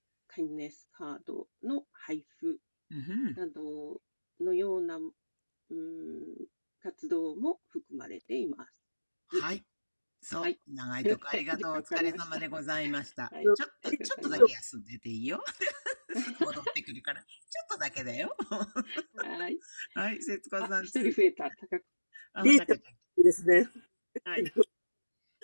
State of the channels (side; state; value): both; inverted; correlation -1.00